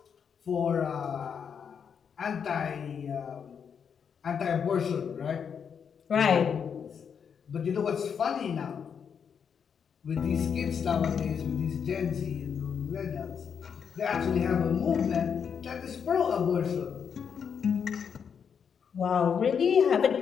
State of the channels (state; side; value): quieter; right; 7.1 dB